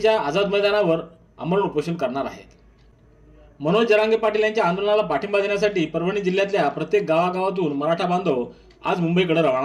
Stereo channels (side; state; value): both; identical; correlation 1.00